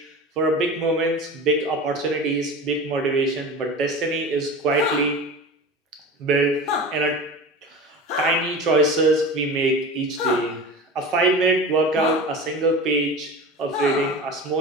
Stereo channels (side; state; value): both; normal; correlation 0.32